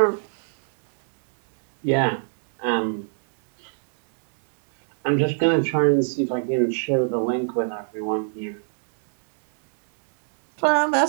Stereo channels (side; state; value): left; silent; digital silence